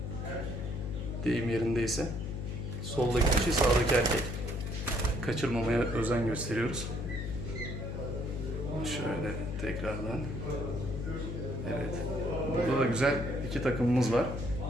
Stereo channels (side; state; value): left; noise; hum, 5 dB below the sound